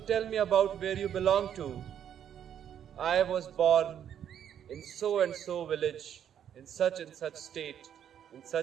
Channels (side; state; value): left; quieter; 9.4 dB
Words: tell me about where you belong to. I was born in so and so village, in such and such state, in